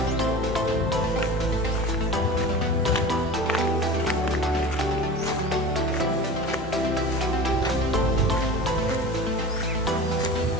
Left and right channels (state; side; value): normal; both; correlation 0.35